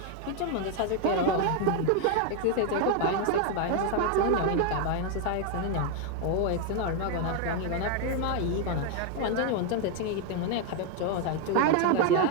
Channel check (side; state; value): both; different; correlation 0.01